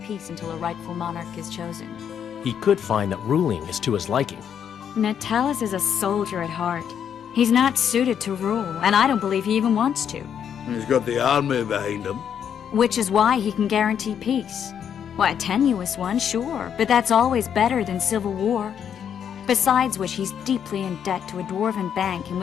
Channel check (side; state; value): right; quieter; 8.4 dB